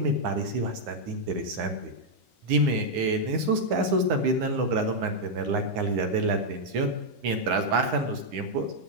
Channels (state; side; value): late; left; 9.7 ms